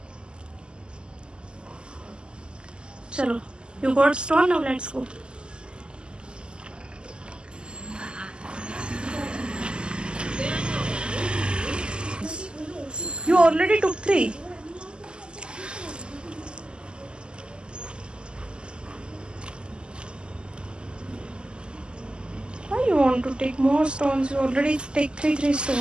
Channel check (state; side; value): late; left; 0.049 ms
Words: चलो, you got stone, now let's go. You already took 3. Why you want to take more stones? You already take 3